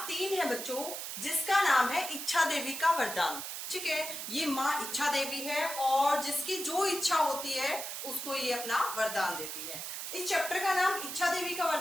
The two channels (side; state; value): right; noise; hiss, 6 dB below the sound